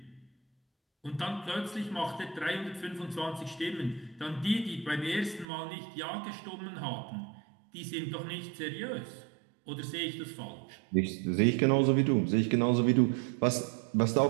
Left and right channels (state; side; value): drops out; left; at 5.5 s